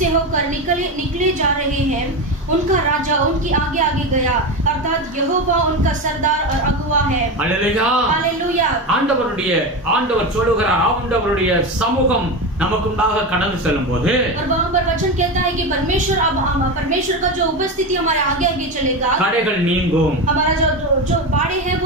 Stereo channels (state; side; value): normal; both; correlation 0.19